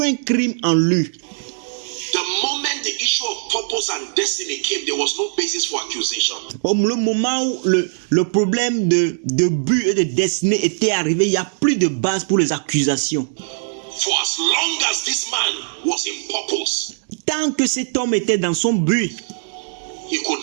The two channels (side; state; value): left; silent; digital silence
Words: crime en lui. The moment the issue of purpose and destiny came, there was no basis for accusation. Le moment où le problème de but et de destinée était arrivé, il n'y a plus de base pour les accusations. For as long as this man was in purpose, Tant que cet homme était dans son but, he could